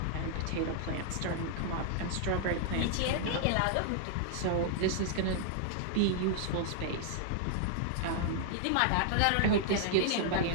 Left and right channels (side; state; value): both; different; correlation -0.01